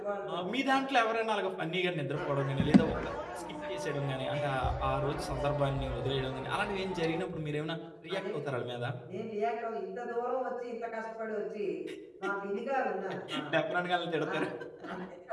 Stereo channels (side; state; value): both; identical; correlation 1.00